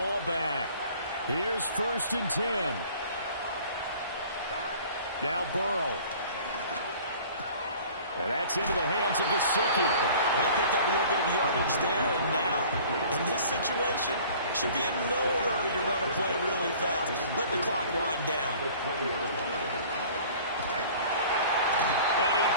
back. Here's 1st and 10. Now Burrow. And that's into the hands of Gesicki. And they picked up a little bit of yardage there. And now, in this situation, should be in no hurry to run a play really fast. Let the clock wind down. And he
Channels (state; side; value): inverted; both; correlation -0.48